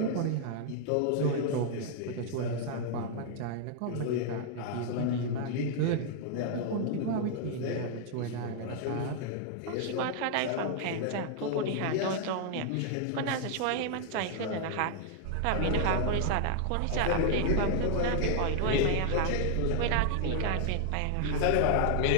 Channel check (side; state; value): both; different; correlation 0.00